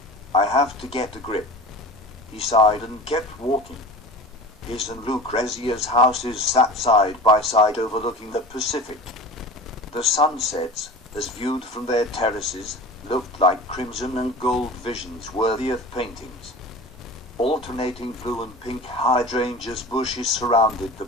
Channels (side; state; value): both; normal; correlation 0.37